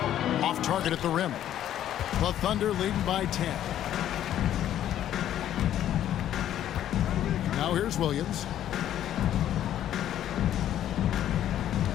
Off target at the rim. The Thunder leading by 10. Now here's Williams.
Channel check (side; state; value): right; quieter; 11.4 dB